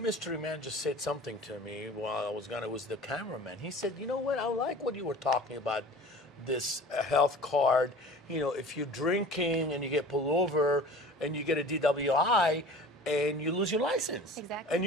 man just said something to me while I was gone. It was the cameraman. He said, you know what, I like what you were talking about, this health card. You know, if you're drinking and you get pulled over and you get a DWI and you lose your license. Exactly. And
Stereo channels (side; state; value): both; normal; correlation 0.41